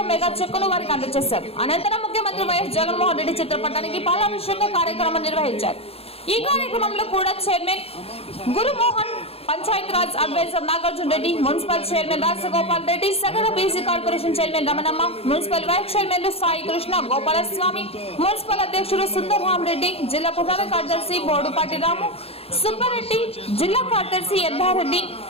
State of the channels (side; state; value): right; late; 0.29 ms